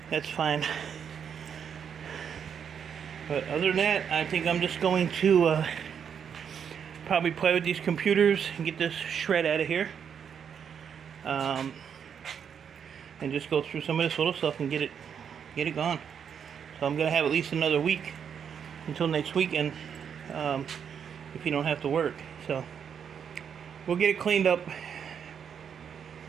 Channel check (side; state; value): left; quieter; 7.6 dB